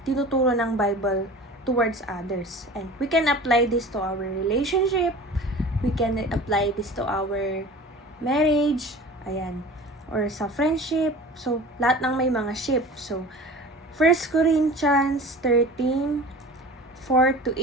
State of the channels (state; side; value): normal; both; correlation 0.39